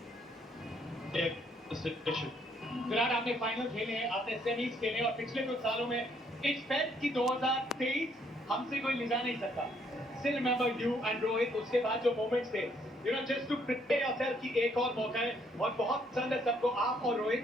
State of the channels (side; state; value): both; normal; correlation 0.68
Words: take the situation. Virat, आपने final खेले हैं, आपने semis खेले और पिछले कुछ सालों में एक्सपेक्ट की 2023 हमसे कोई ले जा नहीं सकता. Still remember you and Rohit, उसके बाद जो मोमेंट्स थे, just to prepare yourself कि एक और मौका है. और बहुत पसंद है सबको, आप और